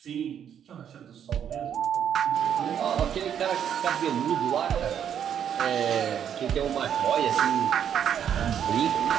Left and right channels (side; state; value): left; quieter; 8.9 dB